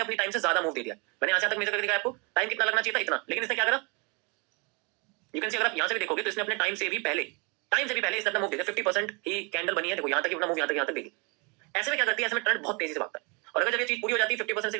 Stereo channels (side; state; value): left; quieter; 31.3 dB